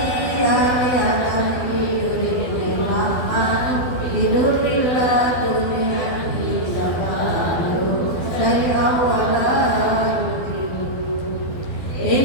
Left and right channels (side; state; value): right; late; 12 ms